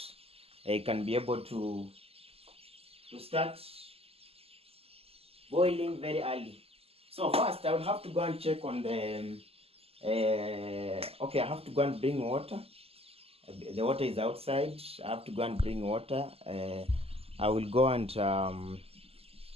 I can be able to start boiling very early. So first I will have to go and check on the okay, I have to go and bring water. The water is outside. I have to go and bring water. I will go and I don't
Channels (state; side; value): late; left; 0.28 ms